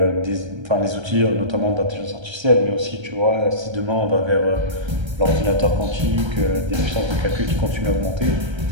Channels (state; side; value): late; left; 1.3 ms